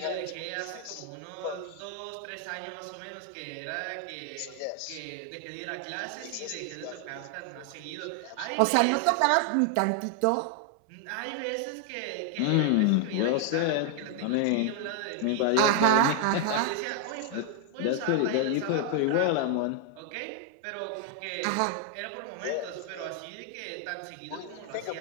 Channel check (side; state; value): both; different; correlation 0.00